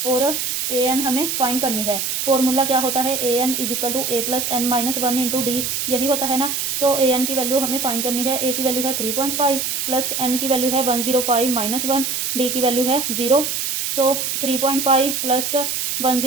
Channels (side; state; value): right; noise; hiss, 1 dB below the sound